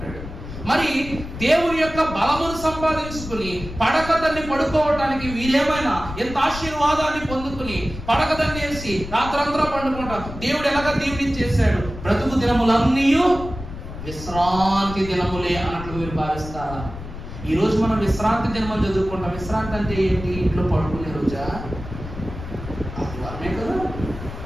మరి దేవుని యొక్క బలమును సంపాదించుకుని పడకదాన్ని పడుకోవటానికి వీరేమైనా ఎంత ఆశీర్వాదాన్ని పొందుకుని పడకదాన్ని వేసి రాత్రంతా పండుకుంటాం. దేవుడు ఎలాగ దీవెనిచ్చేశాడు? బ్రతుకు దినములన్నీ విశ్రాంతి దినములే అన్నట్లు మీరు భావిస్తారా? ఈ రోజు మనం విశ్రాంతి దినమని చదువుకుంటాం. విశ్రాంతి అంటే ఏంటి? ఇంట్లో పడుకునే రోజా? ఆదివారమే కదా.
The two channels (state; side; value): noise; left; rumble, 11 dB below the sound